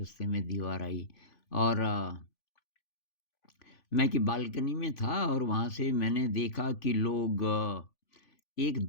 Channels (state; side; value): late; right; 3.5 ms